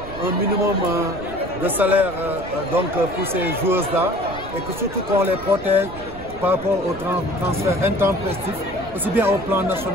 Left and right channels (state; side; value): noise; right; rumble, 15 dB below the sound